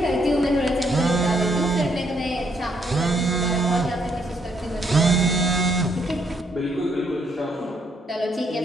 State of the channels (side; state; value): both; normal; correlation 0.72